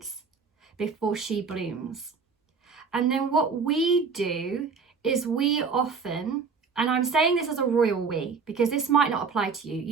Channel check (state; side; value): quieter; left; 5.2 dB